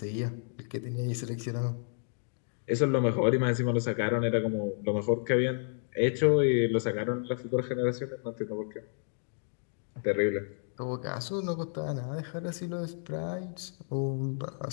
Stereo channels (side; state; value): right; silent; digital silence